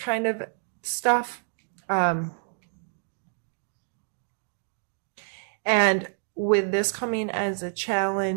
of stuff. And with this coming as a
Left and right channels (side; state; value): left; silent; 58 dB below the other